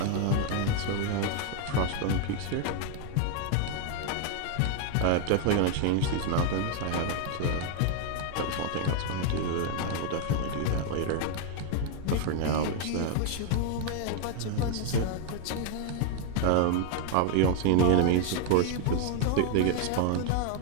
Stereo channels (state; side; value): different; both; correlation 0.00